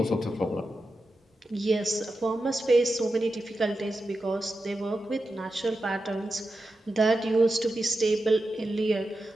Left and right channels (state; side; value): normal; both; correlation 0.90